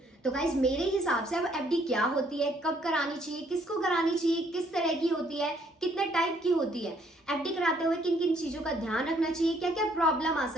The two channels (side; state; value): both; normal; correlation 0.66